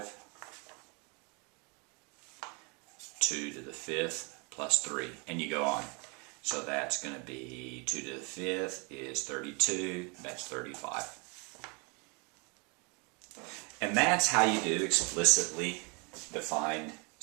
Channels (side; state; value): left; quieter; 32.3 dB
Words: 2 to the 5th plus 3, and you go on. So that's going to be 2 to the 5th is 32, that's 35. And that's how you do explicitly defined